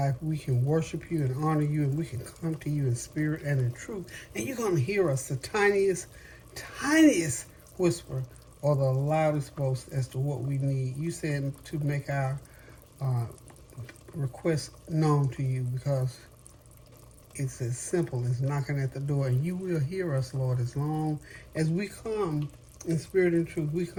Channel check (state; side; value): identical; both; correlation 1.00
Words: we can worship you and honor you, and we can come to you in spirit and in truth. And you're going to hear us, the tiniest whisper or the loudest boast as to what we need. You said to make our uh, request known to you because it's as simple as knocking at the door, and you will hear us, Lord, as long as we come in spirit and truth. We